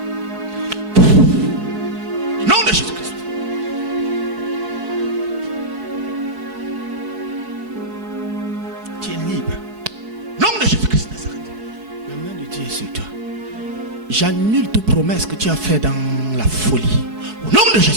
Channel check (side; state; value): left; late; 4.7 ms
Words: Au nom de Jésus-Christ. Tu es libre. Au nom de Jésus-Christ Nazareth. La main de Dieu est sur toi. J'annule toute promesse que tu as faite dans la folie. Au nom de